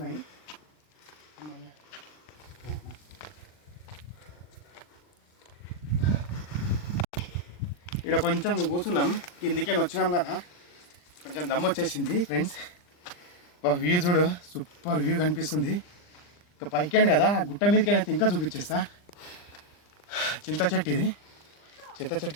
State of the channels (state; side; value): late; right; 39 ms